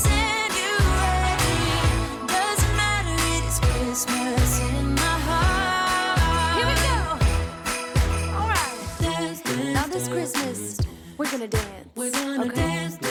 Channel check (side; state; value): both; identical; correlation 1.00